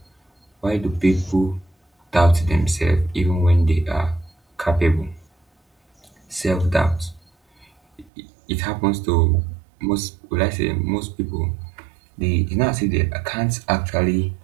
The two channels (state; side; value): drops out; left; at 8.1 s